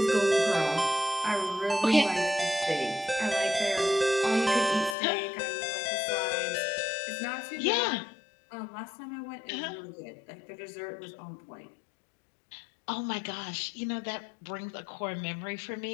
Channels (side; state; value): right; drops out; at 5.0 s